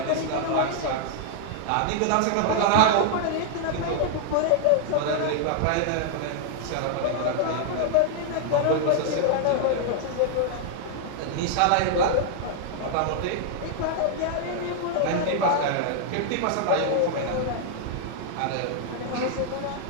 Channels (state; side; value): different; both; correlation 0.00